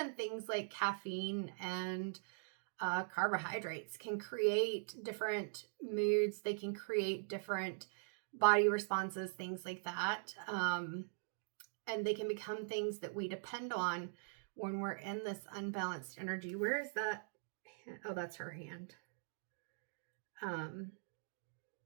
things like caffeine and carbohydrates can create different moods. They can create different body responses, things like that. And they can become things that we depend on when we're in this unbalanced energy. Where is that? Oh, that's her hand.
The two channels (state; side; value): silent; left; digital silence